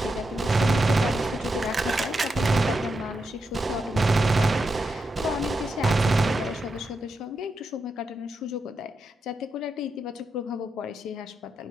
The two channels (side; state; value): both; normal; correlation 0.86